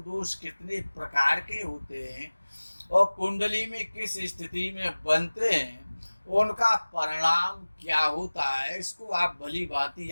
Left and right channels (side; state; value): both; inverted; correlation -1.00